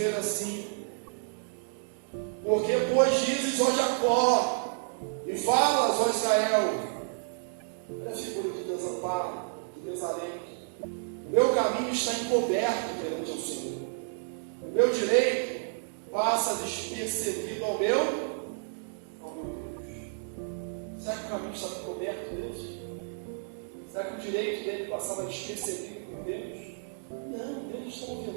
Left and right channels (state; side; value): silent; left; digital silence